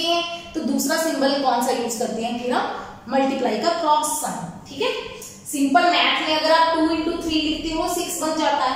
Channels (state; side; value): identical; both; correlation 1.00